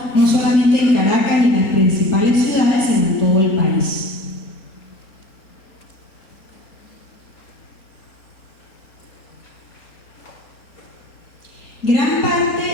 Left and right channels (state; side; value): late; right; 4.9 ms